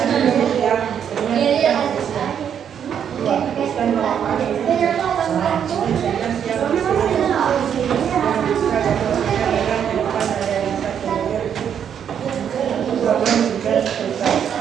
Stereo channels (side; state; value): left; quieter; 8.5 dB